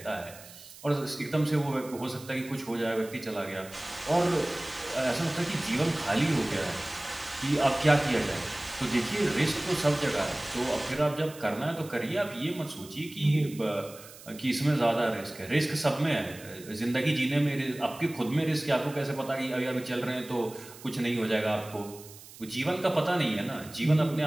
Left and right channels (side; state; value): right; noise; hiss, 18 dB below the sound